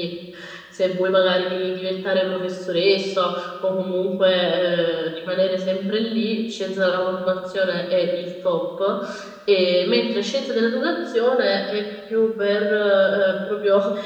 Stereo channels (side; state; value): both; identical; correlation 1.00